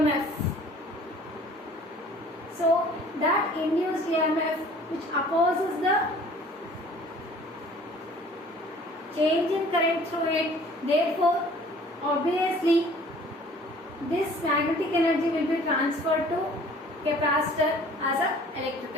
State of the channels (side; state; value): both; normal; correlation 0.51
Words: So that induced EMF which opposes the change in current through it, therefore obviously this magnetic energy will be transferred to capacitor as an